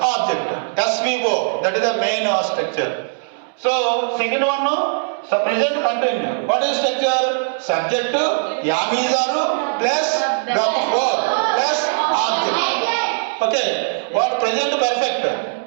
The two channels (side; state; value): left; silent; 66 dB below the other